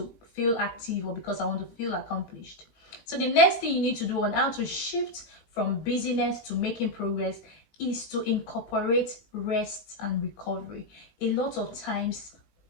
feel active or because I want to feel accomplished. So the next thing you need to do on how to shift from busyness to making progress is to incorporate rest and recovery. A lot of times,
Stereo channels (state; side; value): late; right; 18 ms